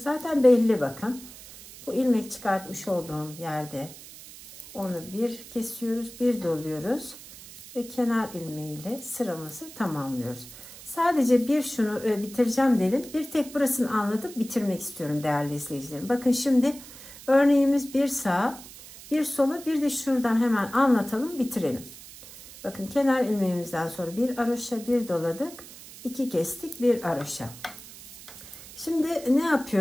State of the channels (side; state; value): right; noise; hiss, 17 dB below the sound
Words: belli bakın. Bu ilmek çıkartmış olduğum yerde onu bir kesiyoruz, bir doluyoruz ve kenar ilmeğiyle sıramızı tamamlıyoruz. Sadece bir şunu bitireceğim dedim. Bir tek burasını anlatıp bitirmek istiyorum değerli izleyicilerim. Bakın şimdi örneğimiz bir sağa, bir sola, bir de şuradan hemen anlatalım, bitirelim. Bakın kenar ilmeğimizden sonra bir haroşa, bir doladık, 2 kestik, bir haroşa. Şimdi ne